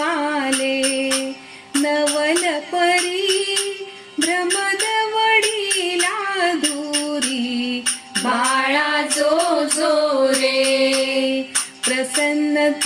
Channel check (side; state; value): both; identical; correlation 1.00